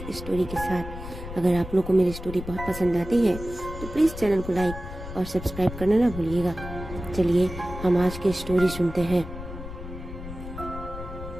स्टोरी के साथ। अगर आप लोग को मेरी स्टोरी बहुत पसंद आती है तो प्लीज चैनल को लाइक और सब्सक्राइब करना ना भूलिएगा। चलिए हम आज की स्टोरी सुनते हैं।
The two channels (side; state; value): left; noise; rumble, 10 dB below the sound